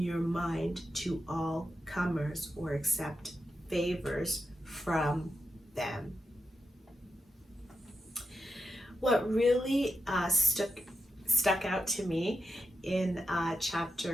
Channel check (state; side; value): normal; both; correlation 0.88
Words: mind to all comers or accept favors from them. What really stuck out to me in